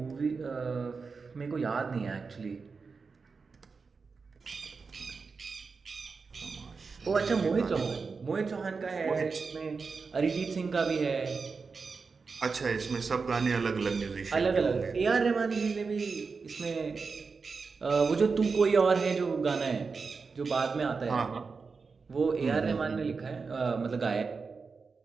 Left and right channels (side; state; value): left; quieter; 4.8 dB